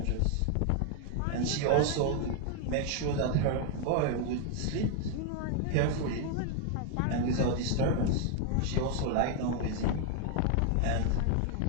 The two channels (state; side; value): different; both; correlation 0.00